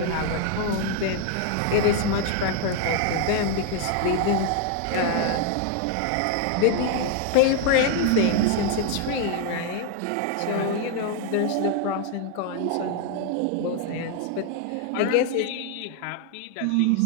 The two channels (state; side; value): different; both; correlation 0.00